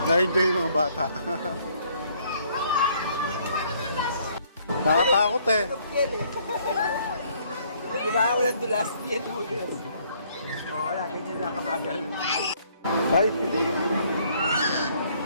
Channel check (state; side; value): inverted; both; correlation -0.64